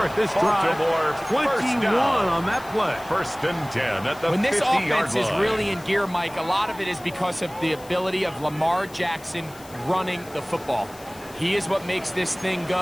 this drive. Baltimore first 21 down. on that play. 1st and 10 at the When this 50-yard offense line. is really in gear, Mike, a lot of it is because of the ability of Lamar Jackson running the football. He is what makes this thing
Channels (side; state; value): left; noise; hiss, 21 dB below the sound